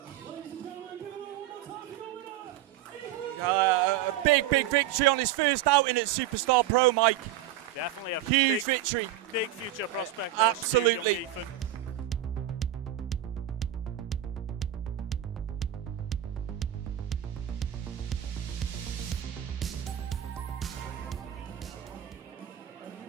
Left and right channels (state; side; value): quieter; left; 12.1 dB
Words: A big victory on his first outing at Superstar Pro, Mike. Definitely a huge victory. Big future prospect there, absolutely. Stu, young Ethan.